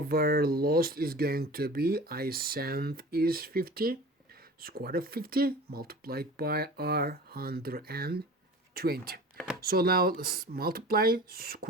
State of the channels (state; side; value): normal; both; correlation 0.39